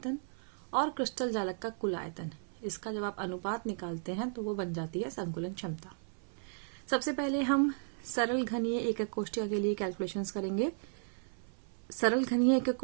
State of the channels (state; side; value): silent; left; 55 dB below the other